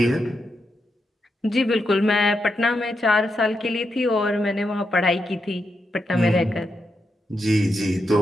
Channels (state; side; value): normal; both; correlation 0.84